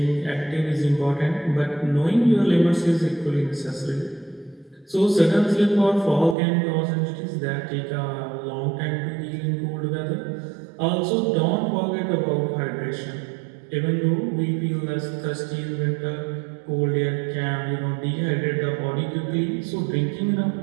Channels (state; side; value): drops out; left; at 6.4 s